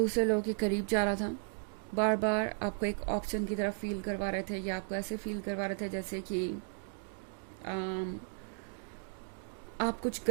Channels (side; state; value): left; silent; 54 dB below the other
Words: लोगों के करीब जा रहा था, बार बार आपको एक ऑप्शन की तरफ फील करवा रहे थे या आपको ऐसे फील करवा रहे थे जैसे कि आप कुछ